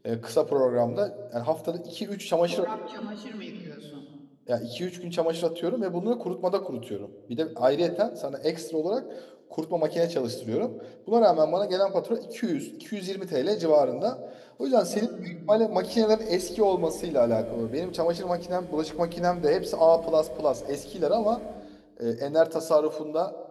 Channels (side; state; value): both; identical; correlation 1.00